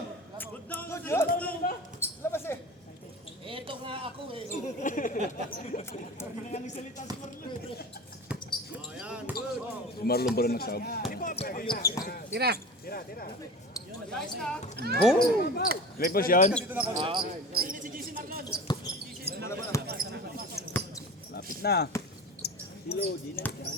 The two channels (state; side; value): normal; both; correlation 0.34